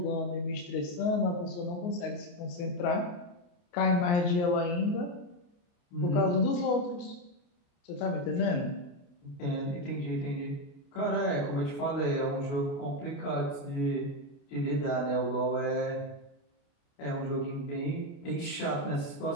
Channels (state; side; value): late; right; 28 ms